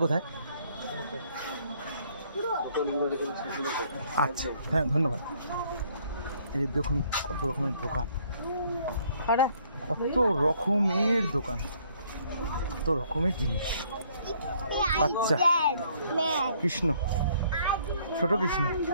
কোথায়? আচ্ছা হ্যাঁ, ধন্যবাদ। এই দেখুন কত রকমের দোকান, কত রকমের দোকান, কত রকমের জিনিস। আচ্ছা, কৃষ্ণ, ছোট কৃষ্ণ।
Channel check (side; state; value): both; inverted; correlation -0.64